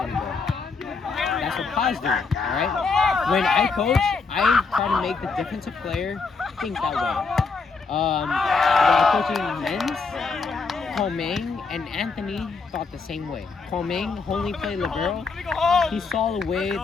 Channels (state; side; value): quieter; right; 4.6 dB